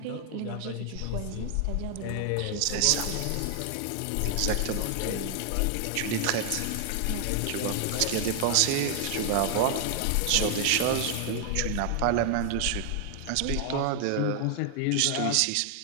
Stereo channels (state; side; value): different; both; correlation 0.00